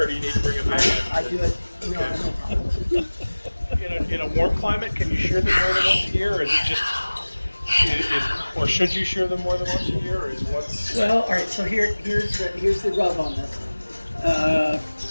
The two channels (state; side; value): inverted; both; correlation -1.00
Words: do you need to bring it back? I do it. No problem. In a warm climate, can you shear them more than once a year, or is it just, or should you shear them more than once a year, or is once? Well, all right. So here's the rub on this.